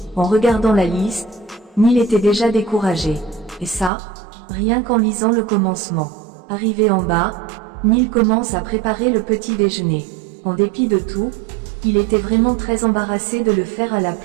En regardant la liste, Neil était déjà découragé. Et ça, rien qu'en lisant le commencement. Arrivé en bas, Neil commence à préparer le petit déjeuner. En dépit de tout, il était vraiment très embarrassé de le faire à la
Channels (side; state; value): left; drops out; at 3.9 s